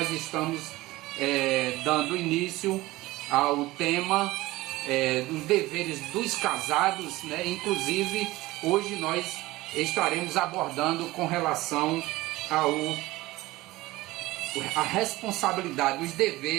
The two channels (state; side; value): quieter; left; 18.9 dB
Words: estamos dando início ao tema dos deveres dos casados, né? Inclusive, hoje nós estaremos abordando com relação a responsabilidade, os